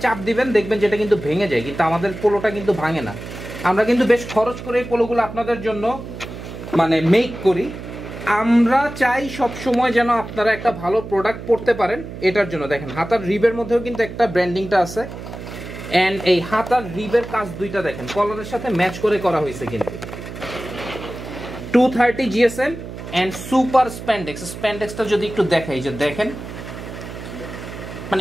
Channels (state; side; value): noise; right; hum, 11 dB below the sound